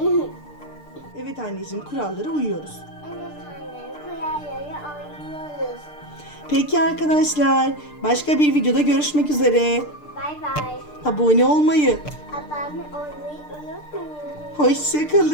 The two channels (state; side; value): late; right; 6.7 ms